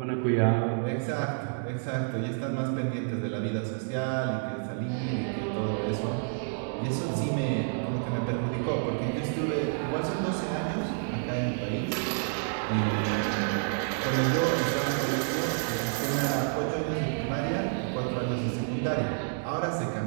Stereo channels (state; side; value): silent; left; digital silence